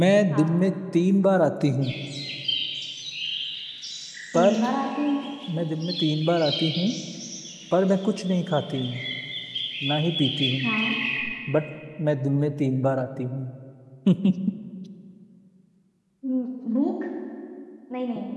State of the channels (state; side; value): identical; both; correlation 1.00